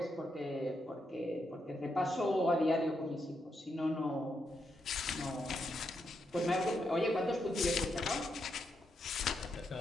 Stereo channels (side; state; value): both; normal; correlation 0.82